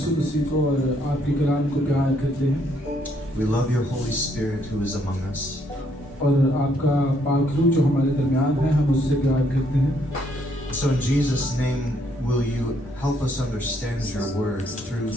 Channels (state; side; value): normal; both; correlation 0.70